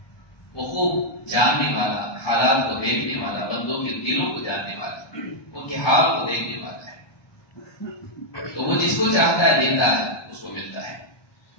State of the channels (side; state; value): right; late; 1.2 ms